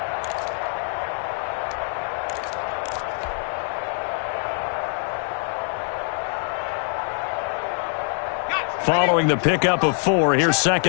Following the pickup of 4, here's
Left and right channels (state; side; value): silent; right; 55 dB below the other